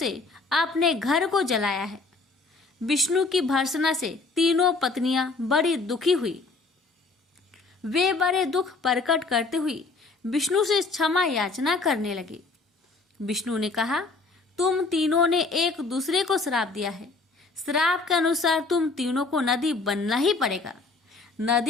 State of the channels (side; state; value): right; quieter; 3.8 dB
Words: अपने घर को जलाया है। विष्णु की भर्त्सना से तीनों पत्नियां बड़ी दुखी हुई। वे बड़े दुख प्रकट करते हुए विष्णु से क्षमा याचना करने लगी। विष्णु ने कहा, तुम तीनों ने एक दूसरे को श्राप दिया है। श्राप के अनुसार तुम तीनों को नदी बनना ही पड़ेगा।